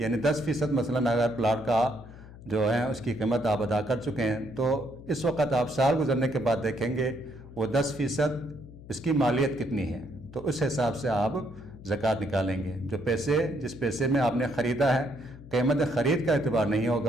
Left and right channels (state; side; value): noise; left; hum, 17 dB below the sound